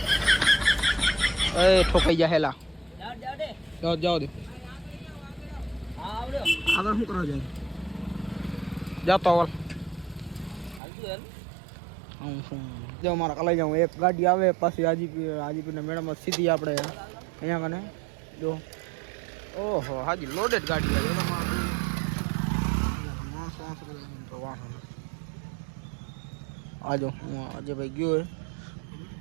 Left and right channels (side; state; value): left; drops out; at 10.8 s